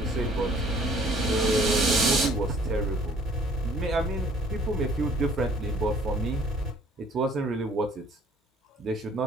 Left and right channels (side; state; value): both; normal; correlation 0.56